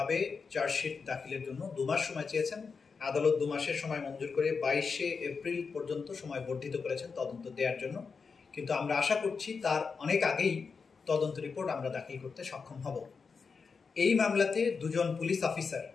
চার্জশিট দাখিলের জন্য 2 মাস সময় চেয়েছেন। আদালত 2 মাসের সময় মঞ্জুর করে 22শে এপ্রিল পর্যন্ত সময় বর্ধিত করেছেন তদন্ত দেওয়ার জন্য। কিন্তু আমরা আশা করছি তার অনেক আগেই তদন্ত রিপোর্ট আমরা দাখিল করতে সক্ষম হব। এই মামলাতে দুজন পুলিশ অফিসার,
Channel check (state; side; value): quieter; right; 5.2 dB